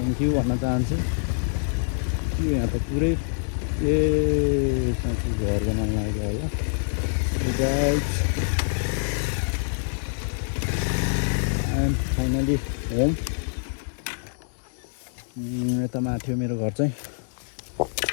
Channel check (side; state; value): right; silent; digital silence